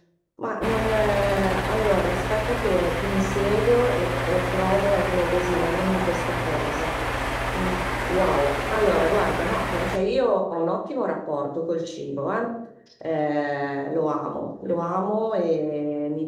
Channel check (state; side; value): identical; both; correlation 1.00